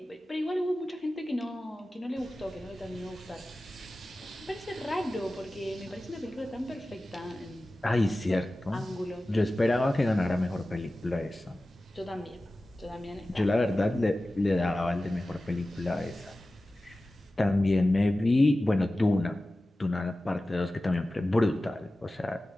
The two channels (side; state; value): both; normal; correlation 0.96